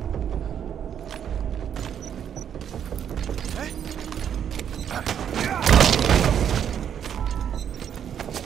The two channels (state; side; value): quieter; left; 8.9 dB